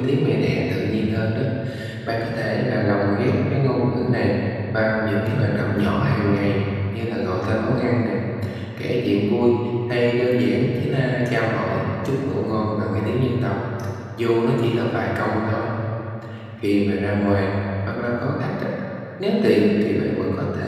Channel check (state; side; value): identical; both; correlation 1.00